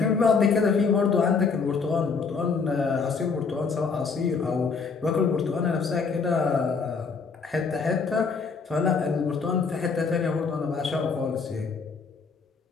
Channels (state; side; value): quieter; right; 5.1 dB